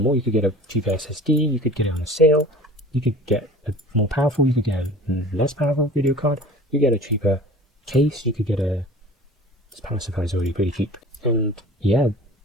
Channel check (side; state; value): both; normal; correlation 0.43